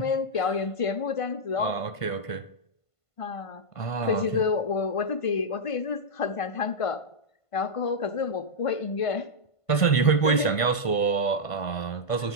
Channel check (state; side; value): late; right; 1.5 ms